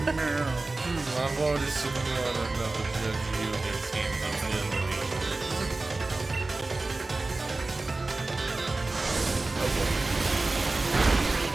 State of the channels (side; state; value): left; quieter; 3.3 dB